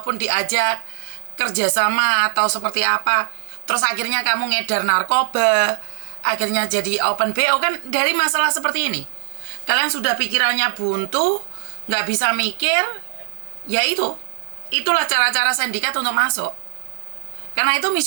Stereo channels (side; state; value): left; silent; digital silence